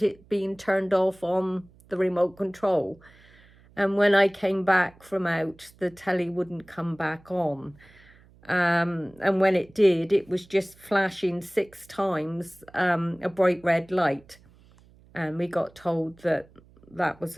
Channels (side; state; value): right; noise; hum, 27 dB below the sound